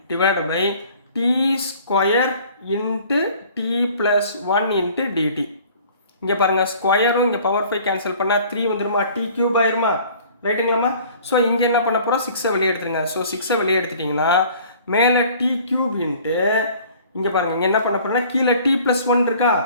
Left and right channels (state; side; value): inverted; both; correlation -0.51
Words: divide by t square into t plus 1 into dt. இங்கே பாருங்கள், ஸ்கொயரும் இங்கே பவர் 5 கேன்சல் பண்ணால் 3 வந்துடுமா, t³ ஆயிருமா. ரைட்டுங்களாம்மா. ஸோ இங்கே என்ன பண்ண போகிறோம், 6ஐ வெளியே எடுத்துருங்க. ஸோ 6ஐ வெளியே எடுத்துட்டிங்கன்னா மேலே t³ இன்ட்டு இங்கே பாருங்கள், இங்கே என்ன பண்ண போகிறோம்னா கீழே t ப்ளஸ் 1 இருக்கா.